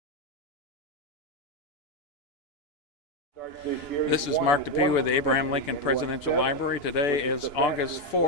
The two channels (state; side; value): late; right; 2.9 ms